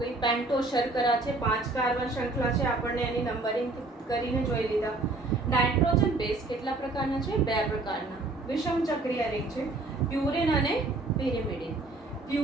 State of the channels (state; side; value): quieter; left; 3.1 dB